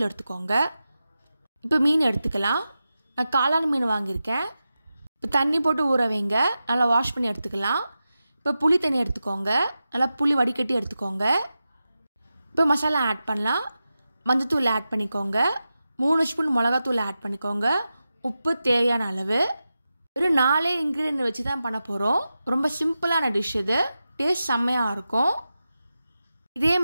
எடுத்துக்கோங்க. இப்போ மீன் எடுத்துக்கலாம். நான் காளான் மீன் வாங்கியிருக்கேன். இப்போ தண்ணி போட்டு ஊற வைங்க, நல்லா வாஷ் பண்ணி எடுத்துக்கலாம். இப்போ புளி தண்ணி எடுத்துக்கோங்க, நல்லா புளி வடிகட்டி எடுத்துக்கோங்க. இப்போ மசாலா ஆட் பண்ணலாம். மஞ்சத்தூள் ஆட் பண்ணிக்கோங்க, 3 ஸ்பூன் மிளகாத்தூள் ஆட் பண்ணிக்கோங்க, உப்பு தேவையான அளவு. ஒரு 4 இன்க்ரீடியன்ட் வச்சு தான் பண்ண போகிறோம். ரொம்ப சிம்பிளான டிஷ் இது, டேஸ்ட் செம்மையாக இருக்கும். இதே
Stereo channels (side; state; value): both; inverted; correlation -0.92